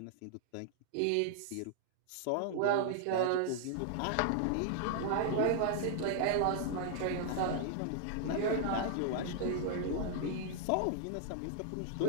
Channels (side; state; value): both; different; correlation -0.01